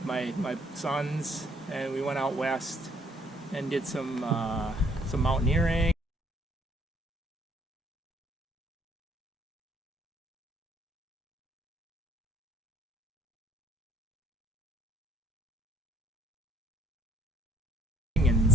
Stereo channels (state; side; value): normal; both; correlation 0.65